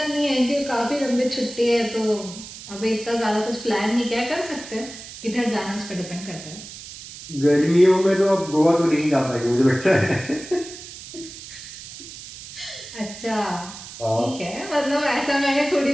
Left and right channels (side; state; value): right; noise; hiss, 14 dB below the sound